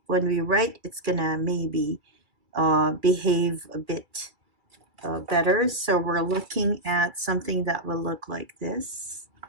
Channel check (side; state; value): left; late; 2.3 ms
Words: when we write, it's gonna maybe behave a bit better. So we're looking at something that will look like this.